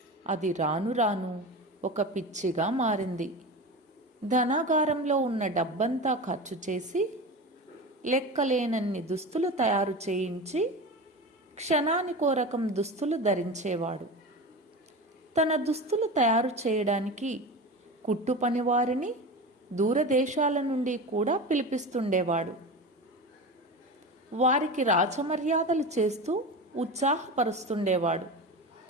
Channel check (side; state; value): both; normal; correlation 0.27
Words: అది రాను రాను ఒక పిచ్చిగా మారింది. ధనాగారంలో ఉన్న డబ్బంతా ఖర్చు చేసి లెక్కలేనన్ని దుస్తులు తయారు చేయించి క్షణానికో రకం దుస్తులు ధరించేవాడు. తన దుస్తులు తయారు చేయడానికి కుట్టు పనివారిని దూరదేశాల నుండి కూడా పిలిపిస్తుండేవాడు. వారికి రాచమర్యాదలు చేస్తూ ఉత్సాహపరుస్తుండేవాడు.